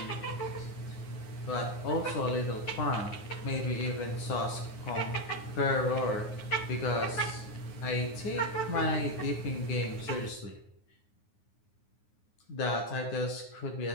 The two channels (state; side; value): late; right; 9.6 ms